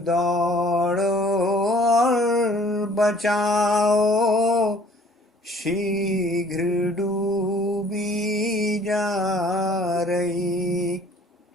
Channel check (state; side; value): normal; both; correlation 0.55